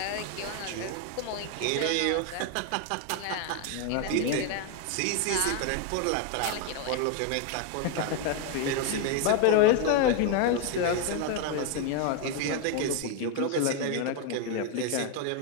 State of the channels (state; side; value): different; both; correlation 0.01